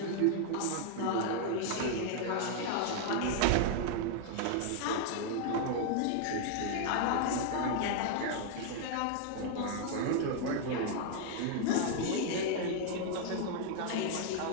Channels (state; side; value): different; both; correlation 0.00